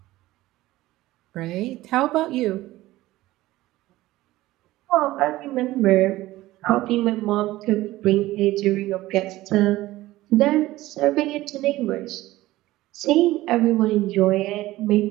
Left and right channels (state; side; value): quieter; left; 17.0 dB